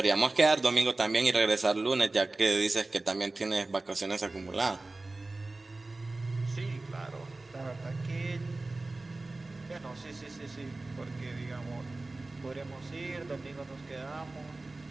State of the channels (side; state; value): left; quieter; 3.1 dB